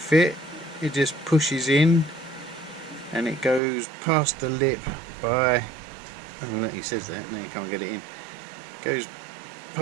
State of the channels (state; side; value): drops out; left; at 3.6 s